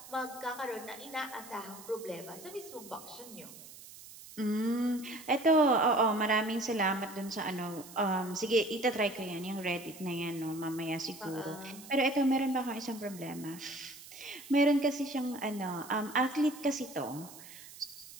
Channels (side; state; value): right; noise; hiss, 17 dB below the sound